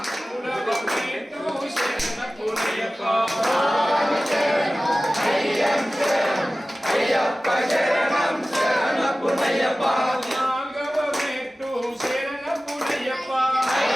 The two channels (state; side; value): normal; both; correlation 0.96